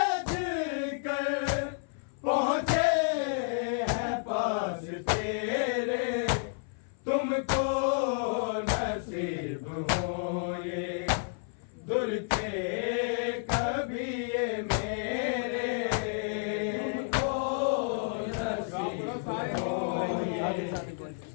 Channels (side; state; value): right; silent; 57 dB below the other